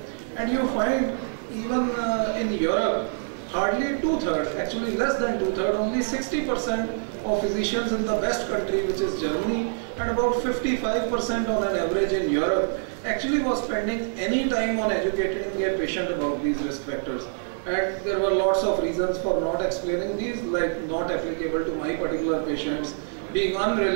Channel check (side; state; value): left; silent; digital silence